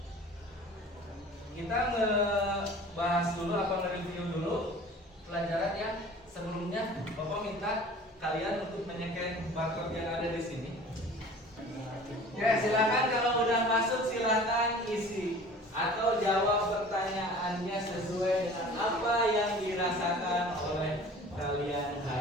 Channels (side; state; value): both; normal; correlation 0.44